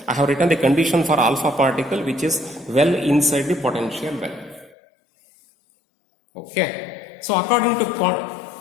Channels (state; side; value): drops out; right; at 4.8 s